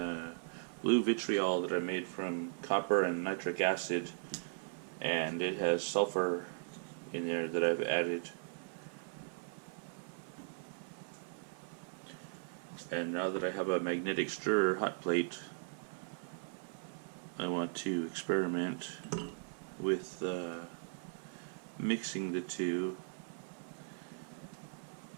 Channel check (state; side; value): silent; left; 52 dB below the other